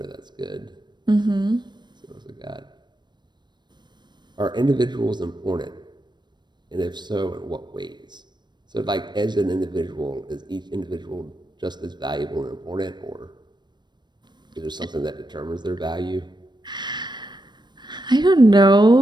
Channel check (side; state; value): left; late; 0.21 ms